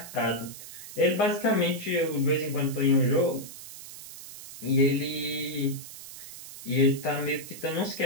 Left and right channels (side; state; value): right; noise; hiss, 13 dB below the sound